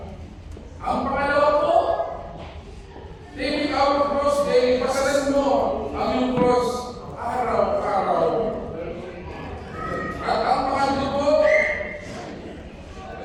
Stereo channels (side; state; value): both; identical; correlation 1.00